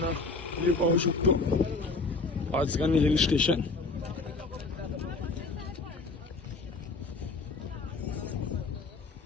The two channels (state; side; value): quieter; right; 3.8 dB